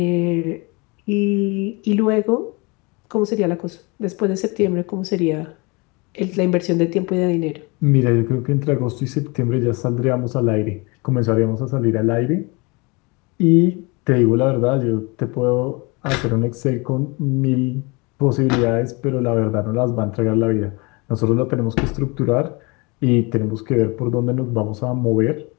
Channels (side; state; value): right; quieter; 27.8 dB